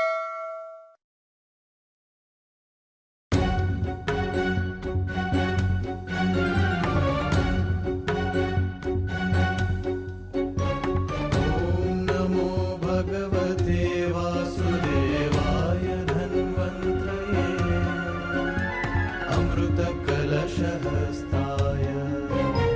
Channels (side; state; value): both; identical; correlation 1.00